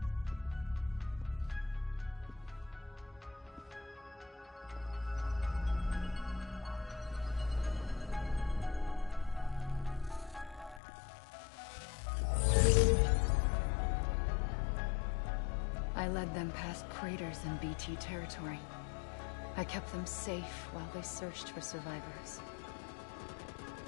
I led them past craters in BT territory. I kept them safe while they searched for survivors.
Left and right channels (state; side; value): drops out; right; at 10.8 s